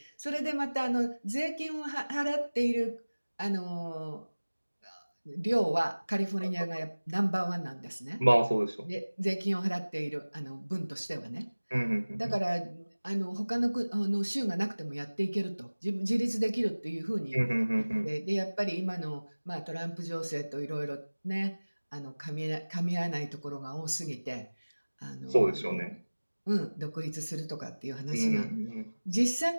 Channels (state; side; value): inverted; both; correlation -1.00